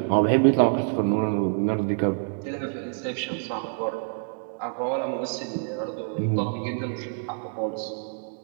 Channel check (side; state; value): left; silent; digital silence